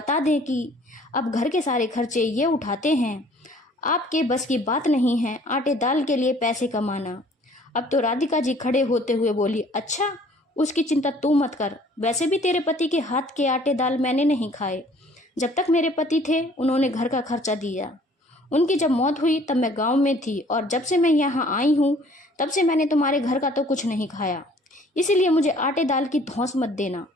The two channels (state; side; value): normal; both; correlation 0.55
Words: दें कि अब घर के सारे खर्चे ये उठाते हैं। आपके बस की बात नहीं है आटे दाल के लिए पैसे कमाना। अब तो राधिका जी खड़े होते हुए बोली, अच्छा, उसकी चिंता तू मत कर। वैसे भी तेरे पति के हाथ के आटे दाल मैंने नहीं खाए। जब तक मेरे पति थे उन्होंने घर का खर्चा दिया। उनकी जब मौत हुई तब मैं गांव में थी और जब से मैं यहाँ आई हूँ तब से मैंने तुम्हारे घर का तो कुछ नहीं खाया। इसीलिए मुझे आटे दाल की धौंस मत देना।